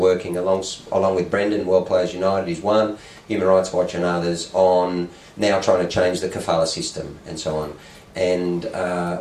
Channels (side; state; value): both; identical; correlation 1.00